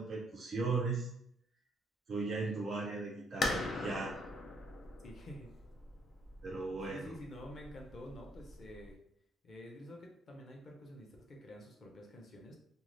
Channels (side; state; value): both; normal; correlation 0.69